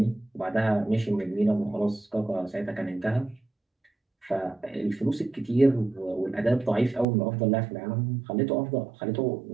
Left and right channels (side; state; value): left; drops out; at 7.1 s